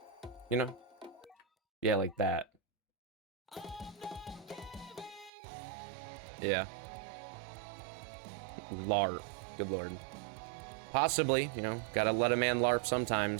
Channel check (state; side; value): drops out; left; at 5.3 s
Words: you know? Yeah, like that. Yeah. LARP, good lord. Possibly, you know, gotta let a man LARP